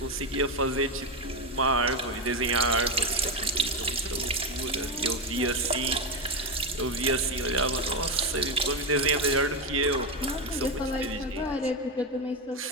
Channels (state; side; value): normal; both; correlation 0.11